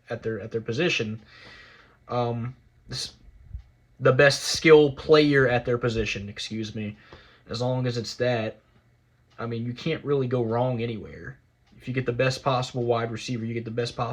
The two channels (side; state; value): both; identical; correlation 1.00